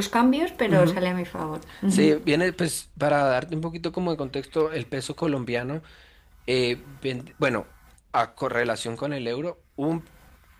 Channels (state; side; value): identical; both; correlation 1.00